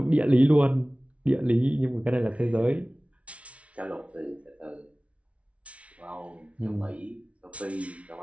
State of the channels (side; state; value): left; late; 0.063 ms